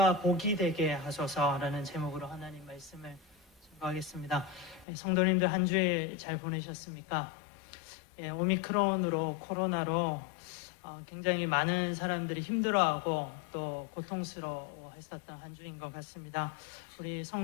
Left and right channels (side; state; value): right; drops out; at 4.9 s